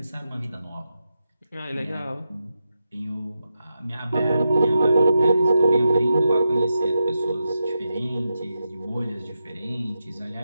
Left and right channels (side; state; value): both; inverted; correlation -0.87